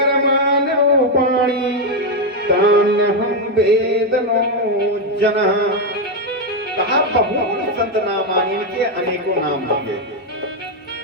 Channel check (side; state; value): both; normal; correlation 0.04